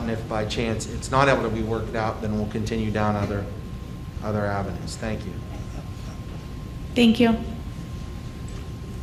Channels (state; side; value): identical; both; correlation 1.00